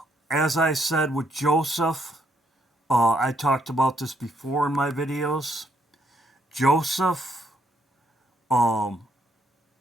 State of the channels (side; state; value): both; normal; correlation 0.72